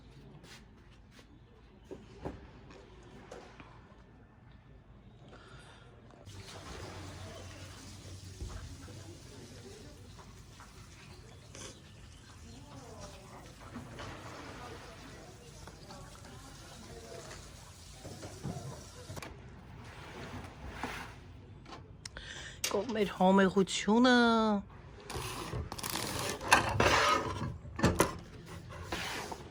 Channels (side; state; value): both; identical; correlation 1.00